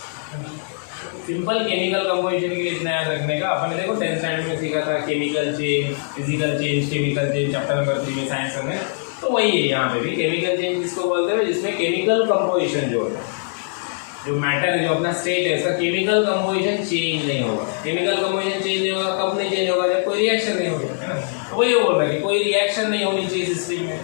Simple chemical composition के लिए इतना याद रखने का। अपन ने देखो 10th standard में सीखा था chemical change, physical change, chemical change, chapter number 3 में साइंस में, तो वही है यहाँ पे भी। केमिकल चेंज जिसको बोलते हैं जिसमें केमिकल कंपोजिशन जो है, जो मैटर है, जो अपना स्टेट है, इसका केमिकल कंपोजिशन चेंज नहीं होगा। केमिकल कंपोजिशन चेंज नहीं होगा, कब नहीं चेंज होगा? जब कोई रिएक्शन नहीं होगा, है ना। तो वही बोल रहा है कि कोई रिएक्शन नहीं होनी चाहिए सिस्टम में,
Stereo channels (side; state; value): right; silent; digital silence